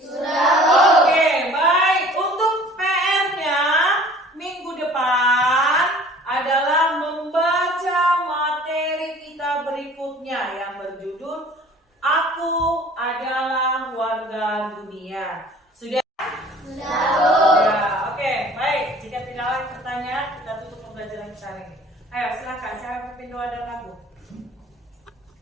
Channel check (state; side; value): normal; both; correlation 0.49